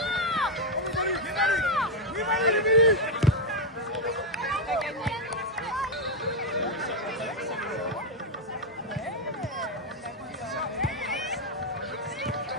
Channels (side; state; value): both; normal; correlation 0.01